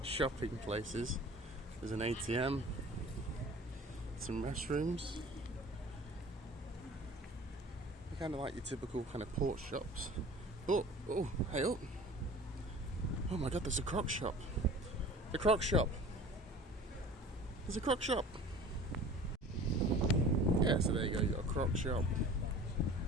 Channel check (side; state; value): both; normal; correlation 0.43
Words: shopping places. There's an ATM, some restrooms. They're kind of like your typical kind of port shops. Oh, hey up! Oh my God, there's a Croc shop. The Croc shop. There's a Croc shop. Yeah, so there you go. You got a Croc shop.